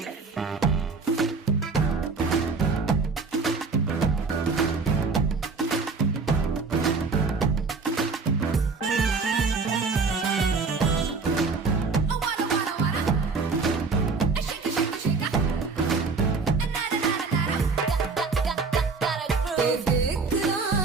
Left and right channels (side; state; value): left; quieter; 4.5 dB